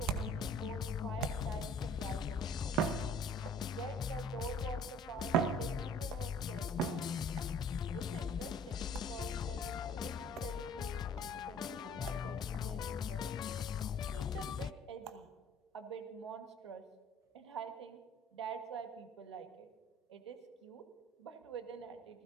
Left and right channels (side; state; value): both; normal; correlation 0.52